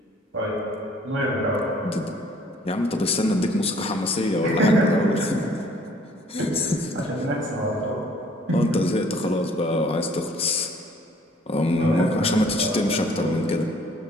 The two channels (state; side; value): normal; both; correlation 0.58